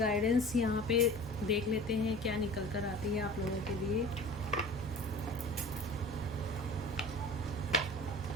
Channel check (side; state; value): both; normal; correlation 0.40